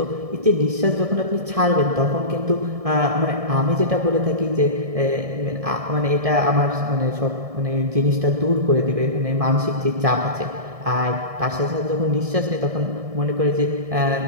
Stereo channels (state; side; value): late; left; 1.7 ms